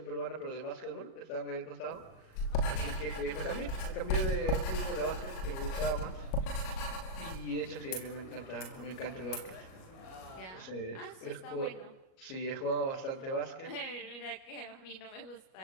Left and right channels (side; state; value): right; late; 38 ms